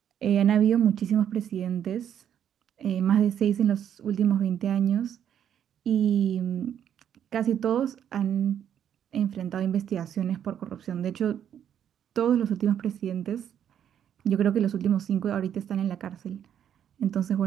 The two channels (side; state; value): left; quieter; 9.4 dB